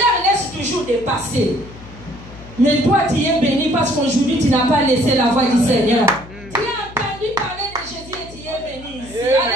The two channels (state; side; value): noise; left; hum, 18 dB below the sound